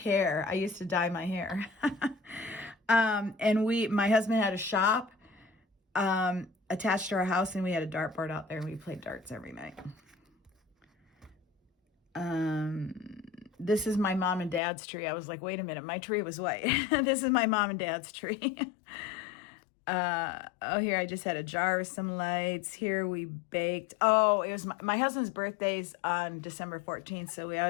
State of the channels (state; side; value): drops out; right; at 14.6 s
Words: I used to dye my hair. And my husband had a shop attached to our house, and we had a dartboard out there, and we played darts every night. This is my mom and dad's tree. I was like, wait a minute, my tree was white. This is my mom and dad's tree. Here I just had a jar of some lights. Here we baked. Oh, it was my husband's birthday's on December 14th, so we